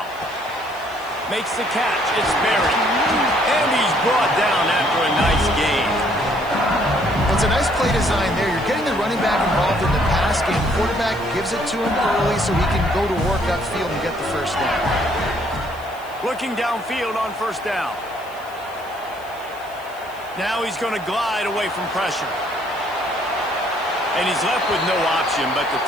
Makes the catch. It's Berry. And he's brought down after a nice gain. Well, it's a nice play design there. You're getting the running back involved in the pass game. Quarterback gives it to him early so he can go to work upfield and get the 1st down. Looking downfield on 1st down. Now he's going to glide away from pressure. And he's left with no option but to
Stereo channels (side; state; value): left; noise; hiss, 24 dB below the sound